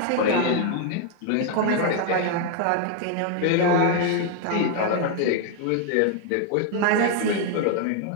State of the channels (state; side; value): different; both; correlation 0.00